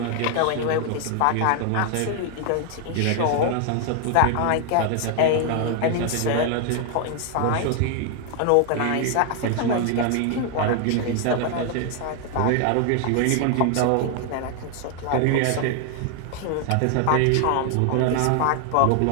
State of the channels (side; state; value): both; different; correlation 0.00